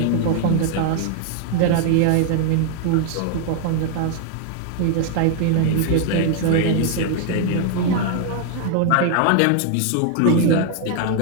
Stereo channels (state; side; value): different; both; correlation 0.00